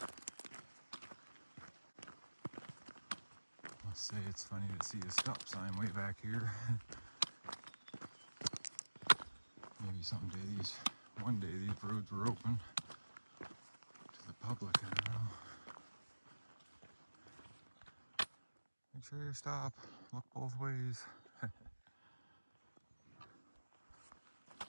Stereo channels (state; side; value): inverted; both; correlation -1.00